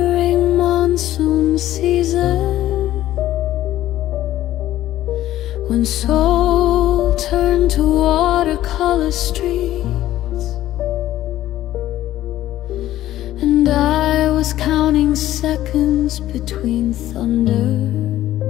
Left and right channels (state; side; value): quieter; right; 13.8 dB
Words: monsoon season, when soul turned to watercolor streets, and I was counting seconds between thunder,